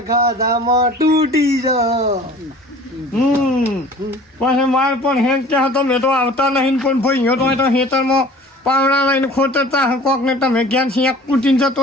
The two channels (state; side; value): normal; both; correlation 0.46